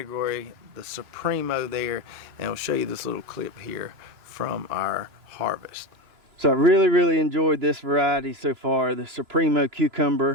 the Supremo there. And I'll show you this little clip here from our harvest. So I really enjoyed this variety so far. The Supremo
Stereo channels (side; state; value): left; late; 3.0 ms